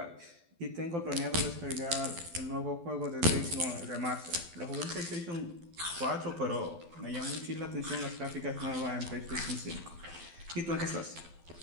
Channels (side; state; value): left; late; 12 ms